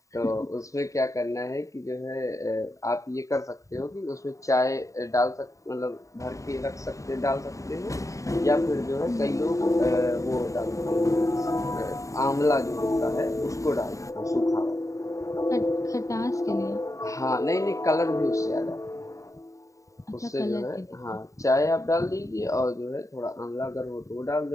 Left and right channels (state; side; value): late; right; 0.16 ms